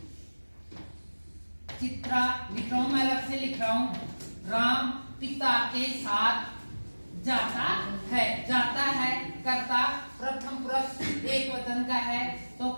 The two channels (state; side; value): inverted; both; correlation -1.00